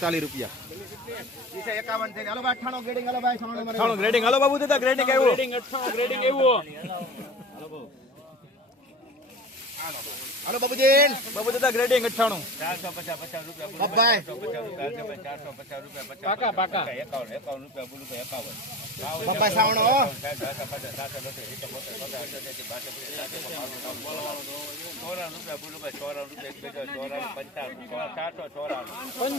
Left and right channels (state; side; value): normal; both; correlation 0.35